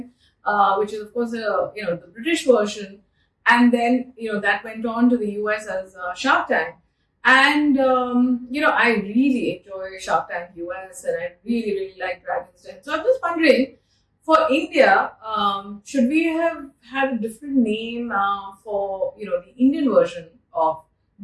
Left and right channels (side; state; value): both; identical; correlation 1.00